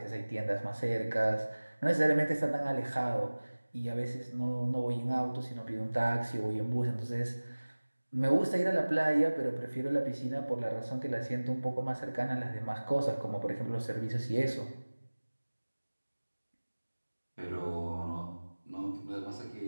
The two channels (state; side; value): inverted; both; correlation -1.00